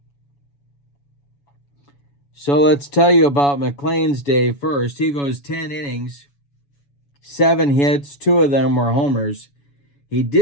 So let's tell you about McLain's day first. He goes 10 innings, 7 hits, 2 of them were homers. He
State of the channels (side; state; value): right; late; 7.1 ms